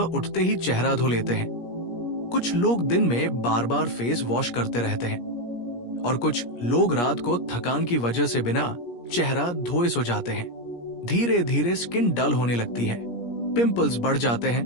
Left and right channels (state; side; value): late; right; 17 ms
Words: ही चेहरा धो लेते हैं, कुछ लोग दिन में बार बार फेस वॉश करते रहते हैं और कुछ लोग रात को थकान की वजह से बिना चेहरा धोए सो जाते हैं। धीरे धीरे स्किन डल होने लगती है, पिंपल्स बढ़ जाते हैं,